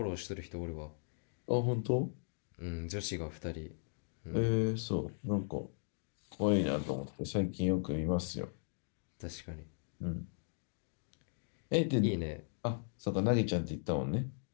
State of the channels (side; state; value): right; silent; digital silence